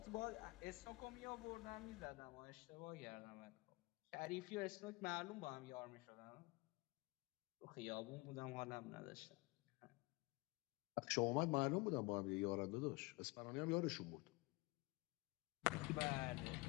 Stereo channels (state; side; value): quieter; right; 24.4 dB